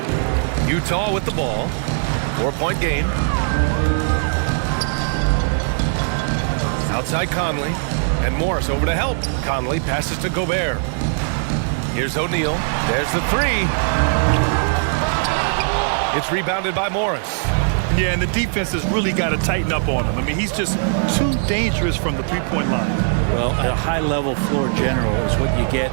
Utah with the ball. 4-point game. Outside Conley. And Morris over to help. Conley passes to Gobert. Here's O'Neal. There's the three. It's rebounded by Morris. Yeah, and the defense has really got to tighten up on him. I mean, he's just too dangerous from the three-point line. Well, a high-level floor general is what you get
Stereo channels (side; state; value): left; silent; 66 dB below the other